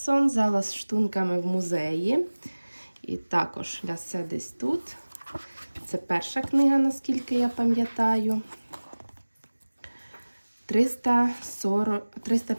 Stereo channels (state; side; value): inverted; both; correlation -1.00